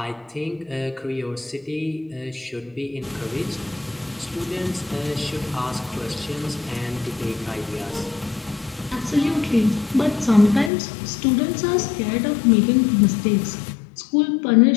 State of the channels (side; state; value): right; drops out; at 10.7 s